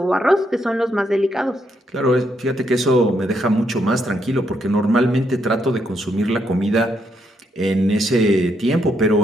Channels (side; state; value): both; normal; correlation 0.77